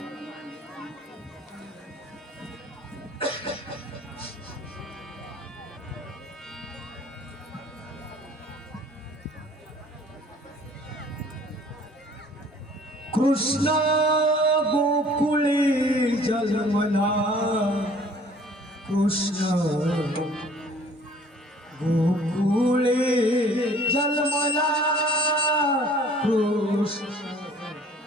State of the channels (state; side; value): normal; both; correlation 0.53